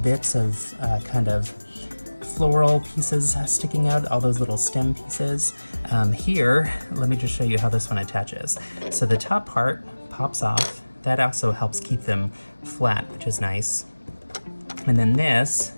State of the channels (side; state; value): both; inverted; correlation -1.00